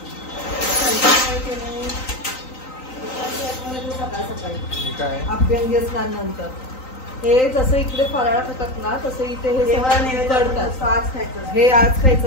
सकाळी अभ्यंगी स्नानानंतर हे जसं इकडे फराळ खातात ना तसं इथे हे करतात. आज खायचं. हे आज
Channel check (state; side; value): late; right; 3.9 ms